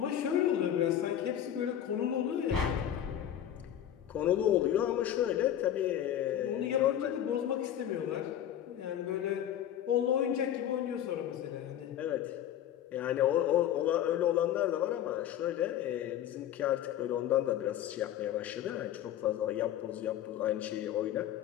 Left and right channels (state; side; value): quieter; right; 10.9 dB